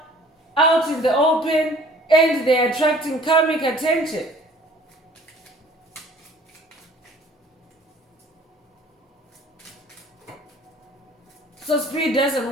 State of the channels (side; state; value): both; normal; correlation 0.52